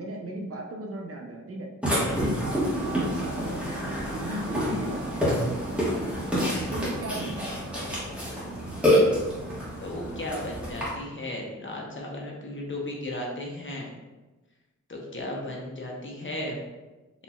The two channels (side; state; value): both; normal; correlation 0.44